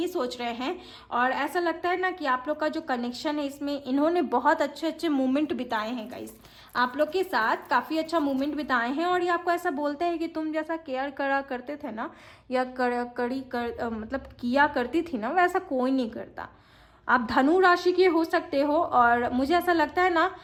सोच रहे हैं। और ऐसा लगता है ना कि आप लोग का जो कनेक्शन है इसमें इन्होंने बहुत अच्छे मोमेंट बिताए हैं गाइस। आप लोग के साथ काफ़ी अच्छा मोमेंट बिताए हैं और ये आपको ऐसा बोलते हैं कि तुम जैसा केयर करा करते थे ना, या मतलब किया करती थी ना, वैसा कोई नहीं करता। आप धनु राशि के हो सकते हो और मुझे ऐसा लगता है ना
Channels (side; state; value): both; identical; correlation 1.00